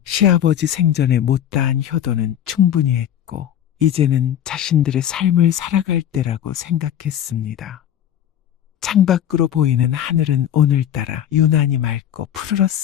시아버지 생전에 못다한 효도는 충분히 했고 이제는 자신들의 삶을 살아갈 때라고 생각했습니다. 창밖으로 보이는 하늘은 오늘따라 유난히 맑고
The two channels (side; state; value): right; quieter; 10.4 dB